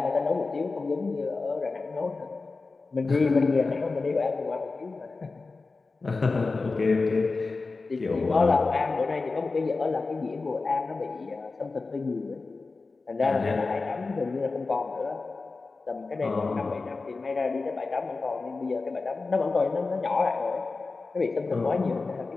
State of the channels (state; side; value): quieter; right; 3.9 dB